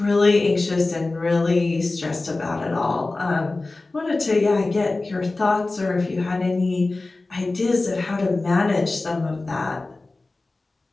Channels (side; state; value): right; quieter; 3.2 dB